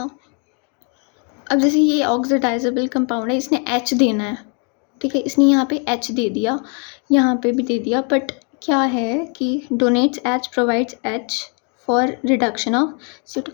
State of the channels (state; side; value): quieter; right; 37.7 dB